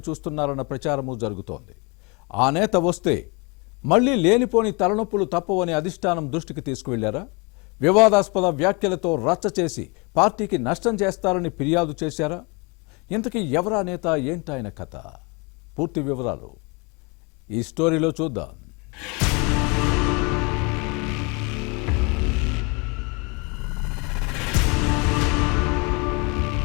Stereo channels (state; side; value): quieter; right; 30.0 dB